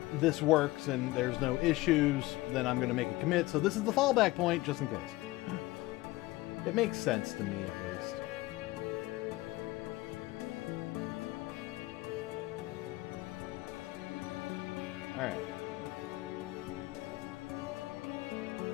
this works and there's no issues, then I'm going to make a commit. So this is the fallback point, just in case. It makes sense to me, at least. Alright.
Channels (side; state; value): right; quieter; 19.4 dB